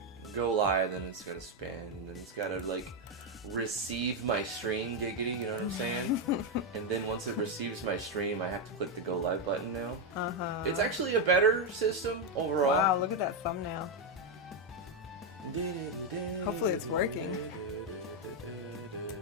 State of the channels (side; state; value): both; normal; correlation 0.04